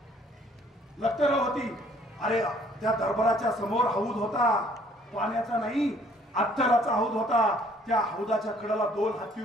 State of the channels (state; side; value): normal; both; correlation 0.60